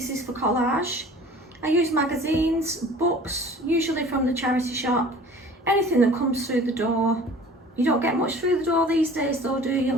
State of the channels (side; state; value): both; normal; correlation 0.46